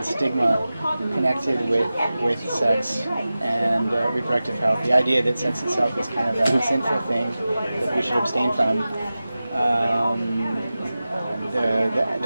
stigma connected with sex and reproductive health, the idea that sex itself is kind of a sinful thing that we should abstain from,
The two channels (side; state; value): both; inverted; correlation -0.95